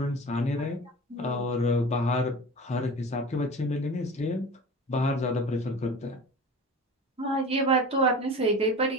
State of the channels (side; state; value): both; normal; correlation 0.35